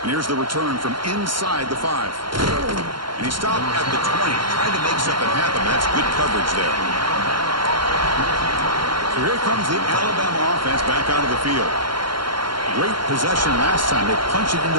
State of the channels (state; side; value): late; left; 0.73 ms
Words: And here's the return from inside the 5. And he stopped at the 20, trying to make something happen. That's good coverage there. So here comes the Alabama offense back out of the field. Great possession last time. They punch it